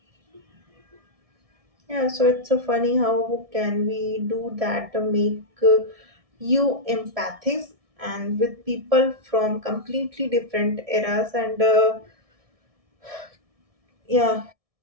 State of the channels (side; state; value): left; late; 1.7 ms